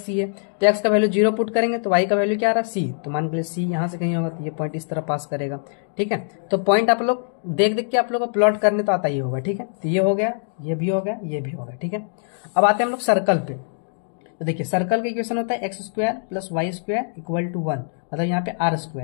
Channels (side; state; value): right; silent; digital silence